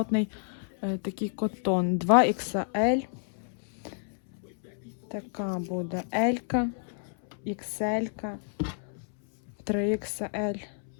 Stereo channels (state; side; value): silent; right; 58 dB below the other